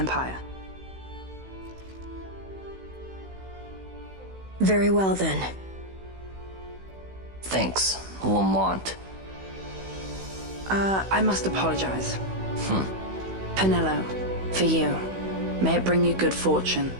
Very well, then. Thanks, Lamont. I must apologize. Penello, for you. May it bring you good fortune.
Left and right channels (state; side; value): late; left; 16 ms